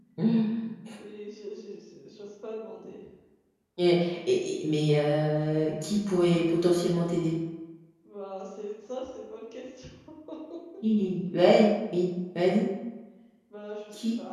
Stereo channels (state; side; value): identical; both; correlation 1.00